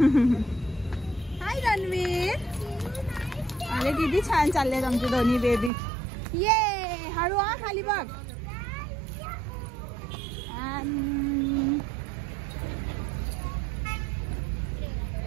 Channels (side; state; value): left; drops out; at 5.7 s